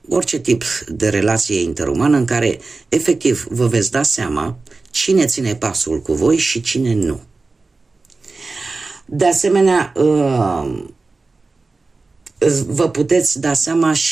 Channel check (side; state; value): left; quieter; 3.7 dB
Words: orice tip de relație interumană în care efectiv vă veți da seama cine ține pasul cu voi și cine nu. De asemenea, vă puteți da seama